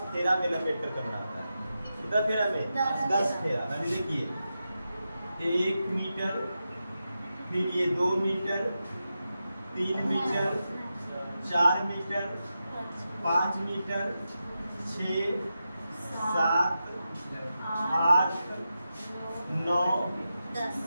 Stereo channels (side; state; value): both; inverted; correlation -0.89